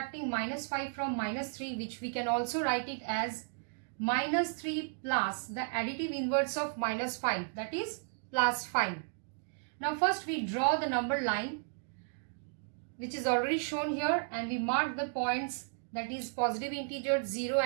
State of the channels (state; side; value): silent; left; digital silence